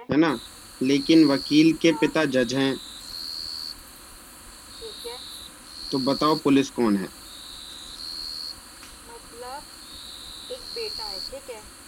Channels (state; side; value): identical; both; correlation 1.00